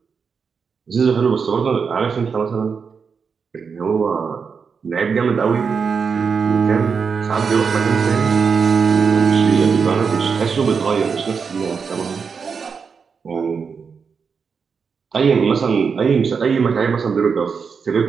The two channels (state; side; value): quieter; left; 5.8 dB